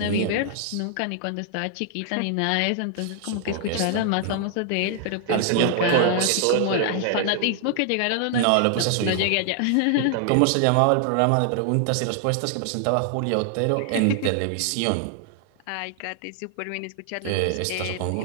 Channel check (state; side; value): different; both; correlation 0.00